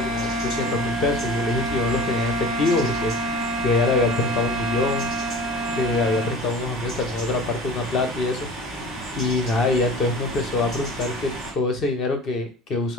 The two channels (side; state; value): both; normal; correlation 0.39